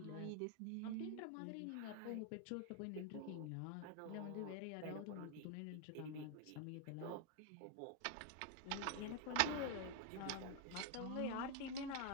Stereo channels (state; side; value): different; both; correlation 0.00